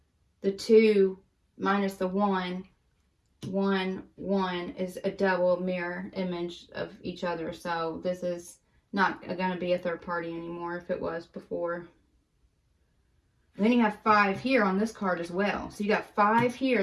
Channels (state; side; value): identical; both; correlation 1.00